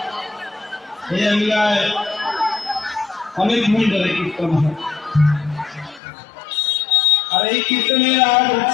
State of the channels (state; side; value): drops out; right; at 6.0 s